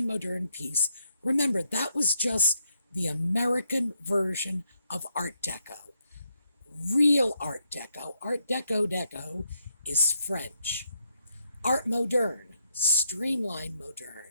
modern piece. Remember, that was just the American version of Art Deco. Real Art Deco is French. Art moderne, streamlined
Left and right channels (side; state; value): both; inverted; correlation -0.77